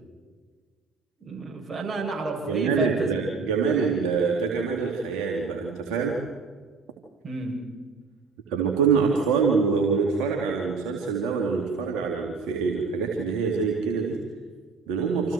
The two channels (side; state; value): left; quieter; 4.9 dB